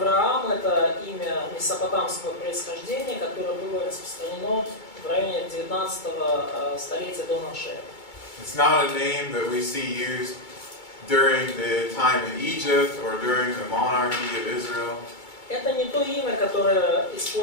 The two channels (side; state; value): right; late; 2.3 ms